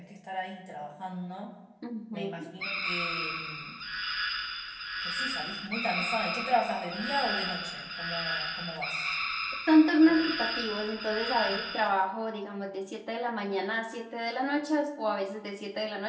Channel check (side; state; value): both; identical; correlation 1.00